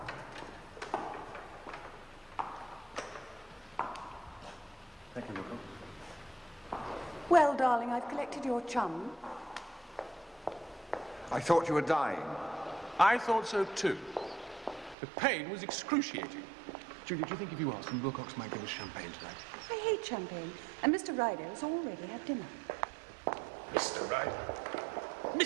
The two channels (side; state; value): left; drops out; at 15.0 s